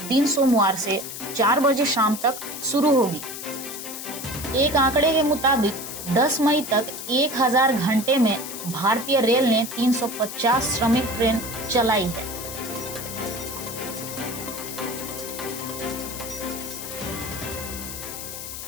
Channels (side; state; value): left; noise; hiss, 9 dB below the sound